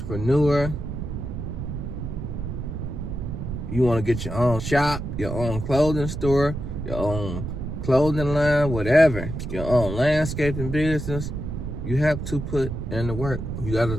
you want to get your own shop, your own clothing store, your own clothing line, whatever, your own landscaping business, you have to put in the work. You got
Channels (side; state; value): right; noise; rumble, 5 dB below the sound